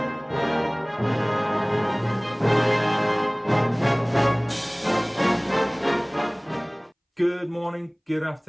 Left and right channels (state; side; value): identical; both; correlation 1.00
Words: Good morning, good